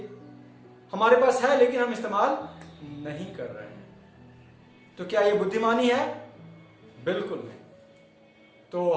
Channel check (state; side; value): identical; both; correlation 1.00